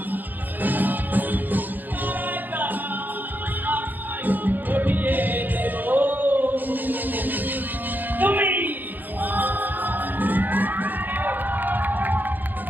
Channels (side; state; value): left; late; 0.087 ms